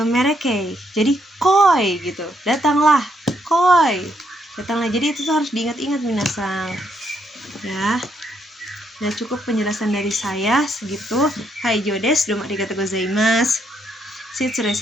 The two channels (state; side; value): normal; both; correlation 0.75